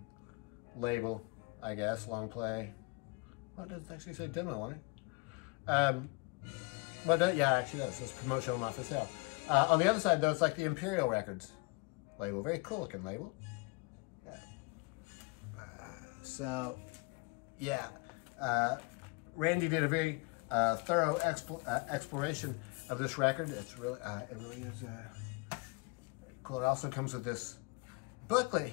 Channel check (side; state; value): right; quieter; 28.3 dB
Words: label, I guess. Long play. Well, it doesn't actually say demo on it. But yeah, actually does. It's promotional, not for sale. On the other side, though, it's like the Imperial Records label. Very cool looking label. Yeah. So, yeah. Randy did a very thorough exploration of this record. It's really, it really is very cool. It also comes with this booklet